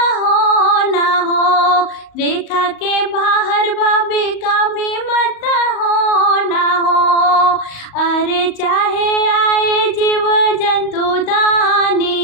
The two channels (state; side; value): late; right; 38 ms